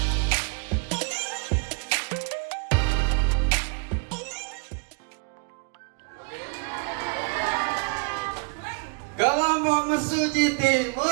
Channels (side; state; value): left; quieter; 35.3 dB